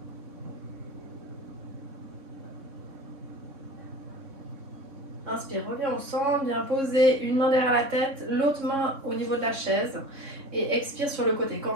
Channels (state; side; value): late; left; 3.6 ms